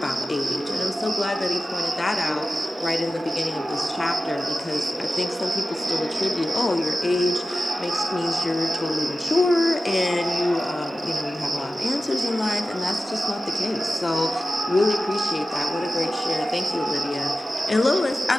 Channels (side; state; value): both; normal; correlation 0.94